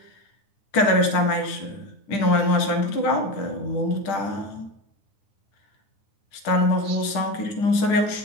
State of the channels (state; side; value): late; right; 10 ms